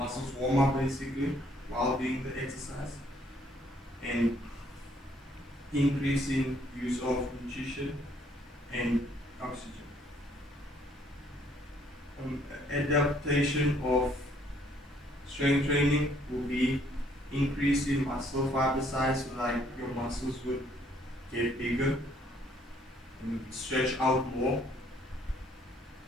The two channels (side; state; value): both; normal; correlation 0.64